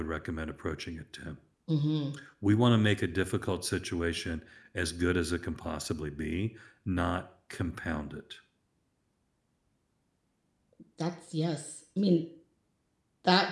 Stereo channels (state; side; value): identical; both; correlation 1.00